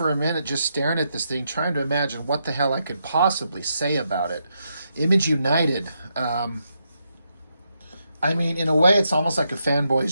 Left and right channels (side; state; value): both; inverted; correlation -0.81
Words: a minute just staring at this thing, trying to imagine what the hell I could possibly say about it. Image United. I mean, in a way, it's almost like a